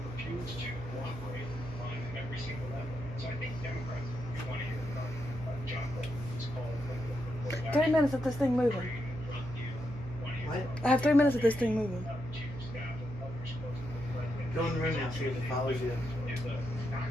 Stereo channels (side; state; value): right; noise; hum, 10 dB below the sound